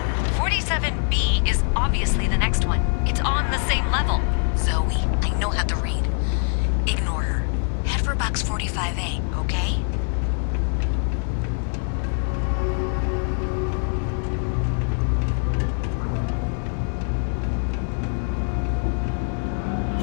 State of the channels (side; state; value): right; silent; 58 dB below the other